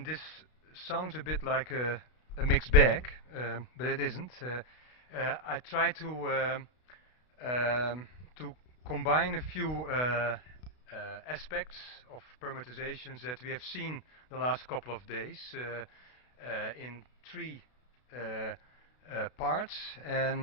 this sounds a bit like a mixed bag, but it isn't. I try to combine a few aspects of permutations that we have seen the last couple of days in three parts,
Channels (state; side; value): late; right; 32 ms